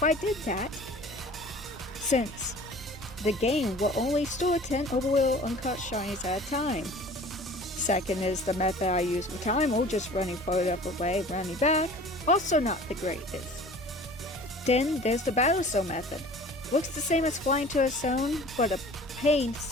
I did that, since the game will only store 10 overall uncut shinies at a time. Second is the method I use for Time, just running further away, running back, also not the greatest. Then there's the battle zone method. Looks the same as flying to a zone, but a pain to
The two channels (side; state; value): both; normal; correlation 0.45